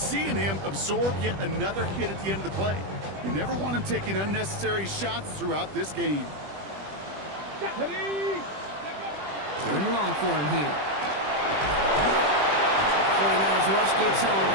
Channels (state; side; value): late; left; 20 ms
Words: him absorb yet another hit at the end of the play. You never want him taking unnecessary shots throughout this game. 3rd and long for him here. 49ers rush Gibbs home,